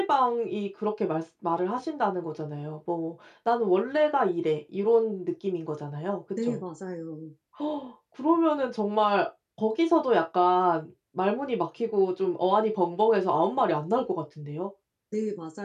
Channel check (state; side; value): identical; both; correlation 1.00